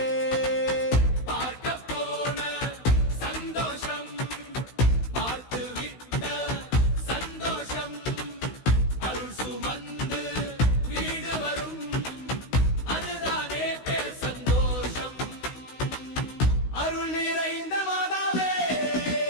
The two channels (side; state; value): right; late; 16 ms